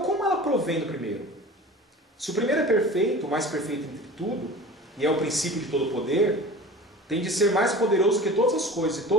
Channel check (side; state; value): both; normal; correlation 0.38